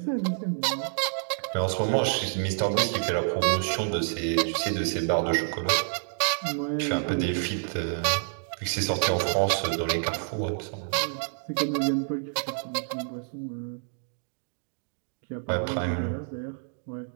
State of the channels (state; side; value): silent; left; digital silence